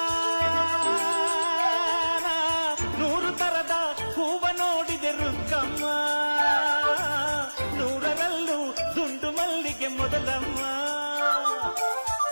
ನೂರು ತರದ ಹೂವ ನೋಡಿದೆ ರುಕ್ಕಮ್ಮ, ನೂರರಲ್ಲೂ ದುಂಡು ಮಲ್ಲಿಗೆ ಮೊದಲಮ್ಮ.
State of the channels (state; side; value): inverted; both; correlation -1.00